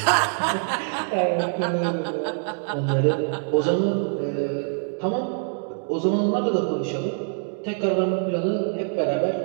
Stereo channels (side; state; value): left; silent; 57 dB below the other